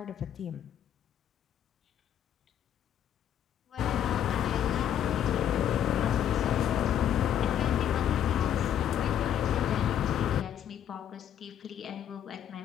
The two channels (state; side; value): quieter; right; 9.9 dB